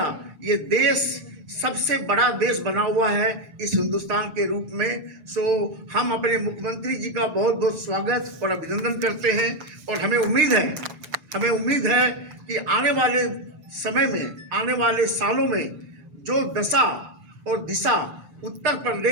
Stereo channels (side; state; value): left; late; 6.6 ms